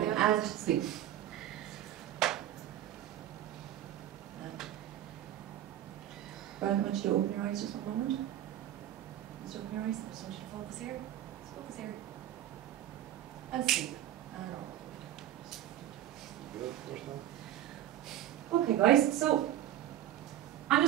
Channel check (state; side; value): quieter; left; 12.3 dB